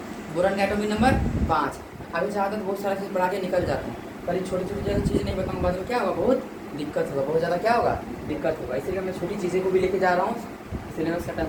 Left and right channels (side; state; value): both; identical; correlation 1.00